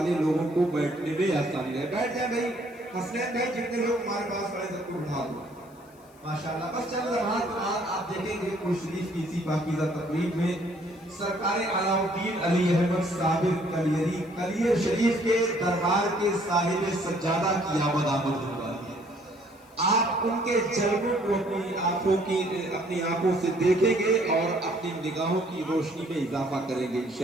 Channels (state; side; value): noise; left; hiss, 29 dB below the sound